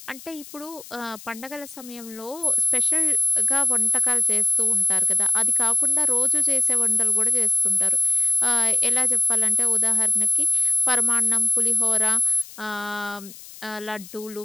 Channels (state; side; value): noise; left; hiss, 18 dB below the sound